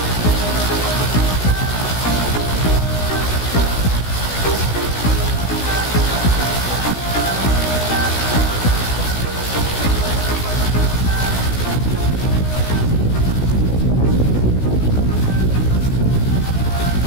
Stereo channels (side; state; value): right; late; 16 ms